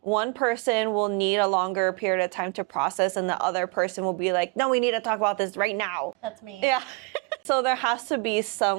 one person will need a longer period of time to process, and the other person will be like, no, we need to talk about this right now. That's me. Yeah. So there has to be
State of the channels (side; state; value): left; quieter; 28.0 dB